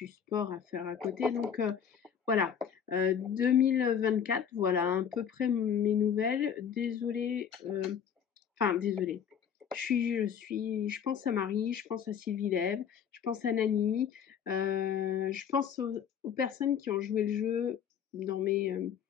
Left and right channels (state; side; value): quieter; right; 8.0 dB